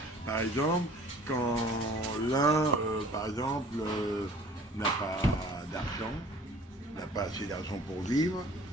par exemple, quand l'un, par exemple, n'a pas d'argent, n'a pas assez d'argent pour vivre,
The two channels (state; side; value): normal; both; correlation 0.51